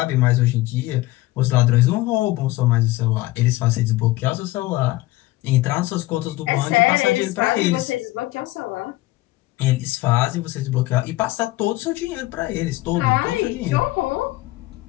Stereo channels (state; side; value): quieter; right; 18.5 dB